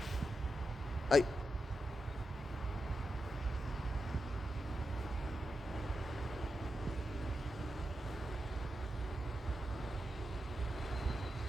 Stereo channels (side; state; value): both; normal; correlation 0.89